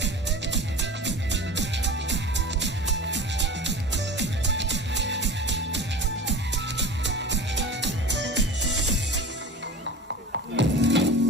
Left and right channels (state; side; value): normal; both; correlation 0.34